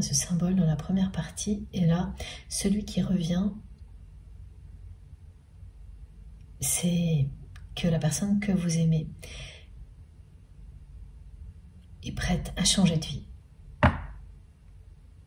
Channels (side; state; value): both; identical; correlation 1.00